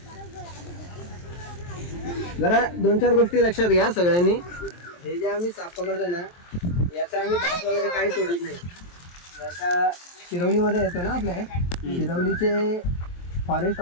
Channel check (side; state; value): right; late; 23 ms